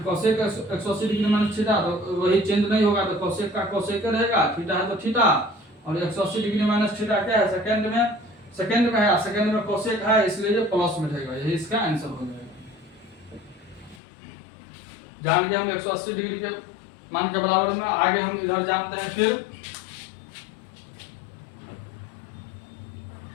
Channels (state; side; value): drops out; right; at 14.0 s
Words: कोसेक 180 डिग्री माइनस थीटा, तो वही चेंज नहीं होगा, तो कोसेक का कोसेक रहेगा, थीटा है तो थीटा, और 180 डिग्री माइनस थीटा क्या है सेकंड में है, सेकंड में कोसेक है इसलिए ये प्लस में रहेगा, यही इसका आंसर हो जाएगा। जान गए हम 180 डिग्री के मान के बराबर में, आगे हम इधर जानते हैं। फिर